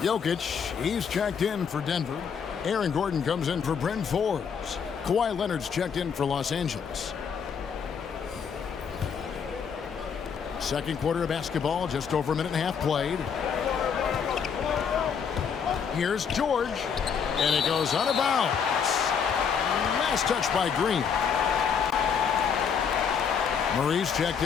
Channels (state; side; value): quieter; right; 6.8 dB